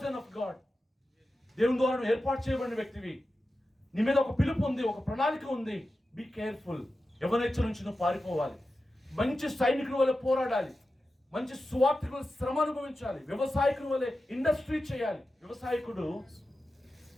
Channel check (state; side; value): normal; both; correlation 0.92